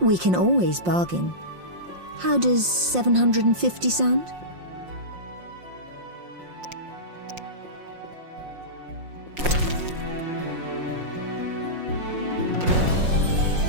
We can always bargain. How does 750 sound?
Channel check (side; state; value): left; late; 5.6 ms